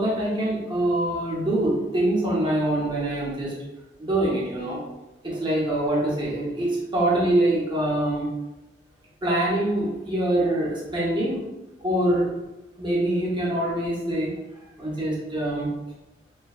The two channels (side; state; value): both; normal; correlation 0.63